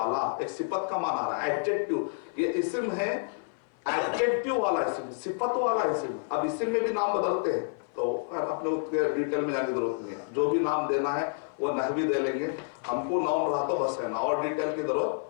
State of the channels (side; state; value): right; silent; 56 dB below the other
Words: ایک صفت کا معنی آ رہا ہے. ایڈجیکٹیو، یہ اسم ہے، ایڈجیکٹیو والا اسم، صفت والا اسم. اب اسم میں بھی نام بدلتے ہیں تو اپنے ڈیٹیل میں جانے کی ضرورت نہیں ہے. جو بھی نام دینا ہے وہ نحوی دے لیں گے، ہم کو نون رہا تو بس ہے نا، اور ڈیٹیل کی